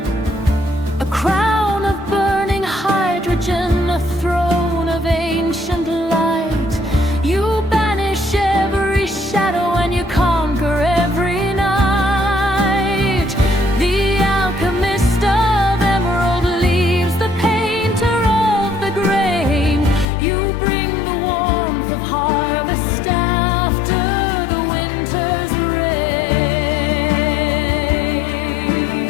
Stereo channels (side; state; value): right; drops out; at 20.1 s